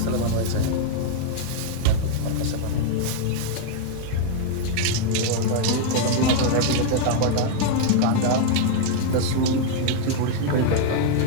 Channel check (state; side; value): different; both; correlation 0.00